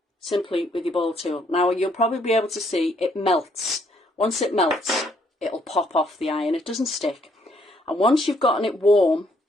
simply with your ball tool. Now you'll probably be able to see it melts. Once it melts, it'll pop off the iron. It doesn't stick. And once you've gotten it warm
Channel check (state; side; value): normal; both; correlation 0.69